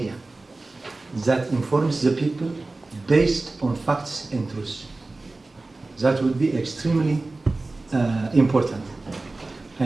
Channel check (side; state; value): left; quieter; 3.2 dB